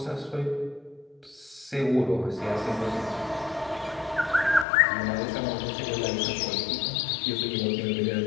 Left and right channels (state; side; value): drops out; right; at 4.7 s